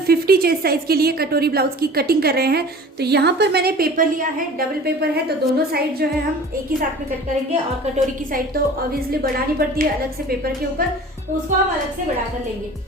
50 चेस्ट साइज के लिए कटोरी ब्लाउज की कटिंग कर रहे हैं। तो यहाँ पर मैंने पेपर लिया है, डबल पेपर है, तो दोनों साइड जो है हम एक ही साथ में कट करेंगे। और कटोरी की साइड तो ऑब्वियसली बढ़ानी पड़ती है अलग से पेपर के ऊपर, तो उसको हम अलग से बढ़ा कर लेंगे।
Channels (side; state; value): both; normal; correlation 0.42